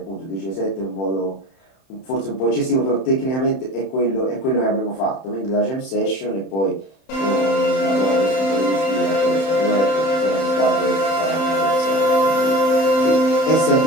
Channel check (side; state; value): right; late; 31 ms